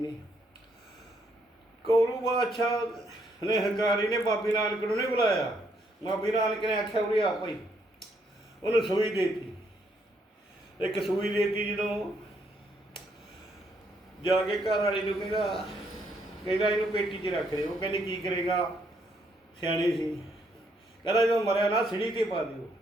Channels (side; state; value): both; normal; correlation 0.73